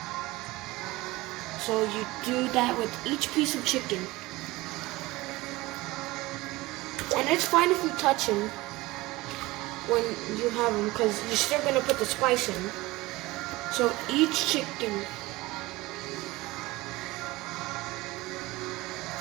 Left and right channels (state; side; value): quieter; left; 20.3 dB